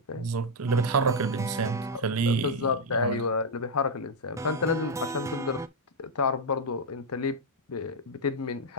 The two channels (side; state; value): both; normal; correlation 0.00